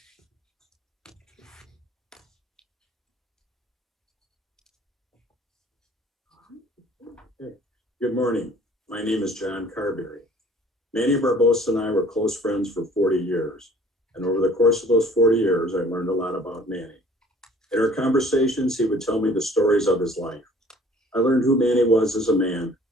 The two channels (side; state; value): both; normal; correlation 0.53